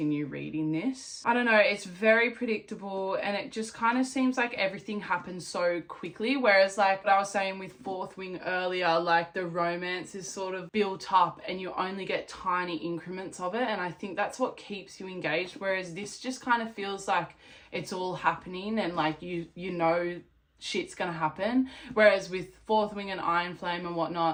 reading this. I don't know. It's very predictable, and it just kind of seems like everything happens so quickly. Whereas, like what I was saying with Fourth Wing earlier, like, the romance is sort of built up and you only get tiny increments of it. And I think that's what keeps you engaged. Whereas this just kind of feels like it's all happening and, like, you know shit's gonna happen. Whereas with Fourth Wing and Iron Flame and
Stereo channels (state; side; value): identical; both; correlation 1.00